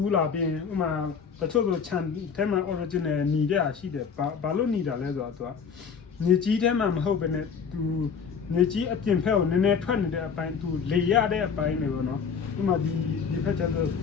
ူးလာပြီးဥမာတချို့ဆိုခြံထဲမှာ original ညီတဲ့အားရှိတယ်ဘာလို့ညီတာလဲဆိုတော့သူကညီကြီးထဲမှာမဟုတ်ဘဲနဲ့သူညီကြီးအပြင်ဖက်ကိုနည်းနည်းထွက်နေတဲ့အပိုင်းသူလေရတဲ့အပိုင်းတွေပေါ့နော်ဥမာဒီဖက်ချက်ဆို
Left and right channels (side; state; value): right; quieter; 6.3 dB